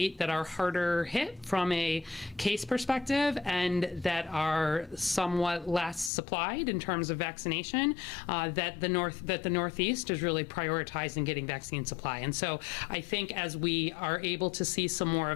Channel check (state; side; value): drops out; right; at 6.1 s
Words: that are harder hit from a case perspective and that are somewhat less supplied in terms of vaccination, that the Northeast is really prioritizing getting vaccine supply. And so I think as we are able to see some more